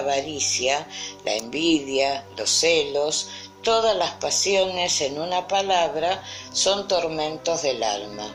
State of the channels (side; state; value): both; identical; correlation 1.00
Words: la envidia, los celos, todas las pasiones, en una palabra, son tormentos del alma.